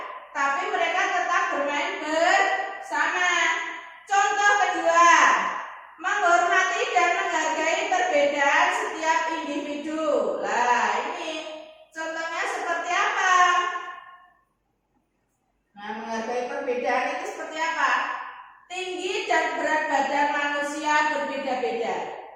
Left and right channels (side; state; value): both; identical; correlation 1.00